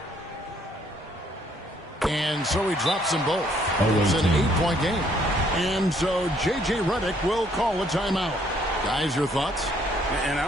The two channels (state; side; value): normal; both; correlation 0.66